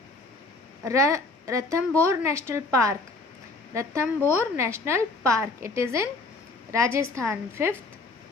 Ranthambore National Park. Ranthambore National Park. It is in Rajasthan. Fifth,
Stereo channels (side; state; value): right; quieter; 3.4 dB